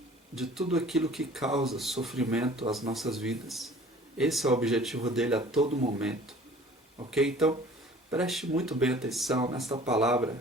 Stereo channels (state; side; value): normal; both; correlation 0.48